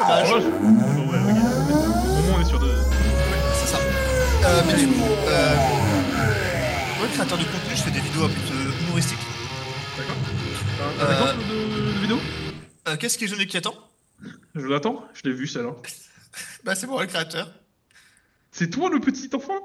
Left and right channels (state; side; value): identical; both; correlation 1.00